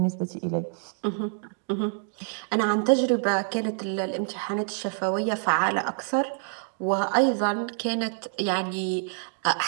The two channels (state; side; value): silent; left; digital silence